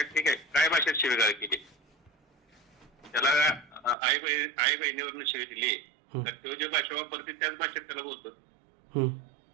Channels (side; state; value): left; drops out; at 4.0 s